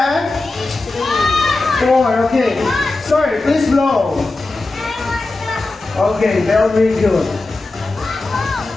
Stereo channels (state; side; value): quieter; right; 3.2 dB